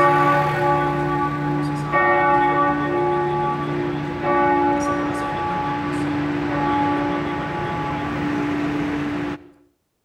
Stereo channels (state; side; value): identical; both; correlation 1.00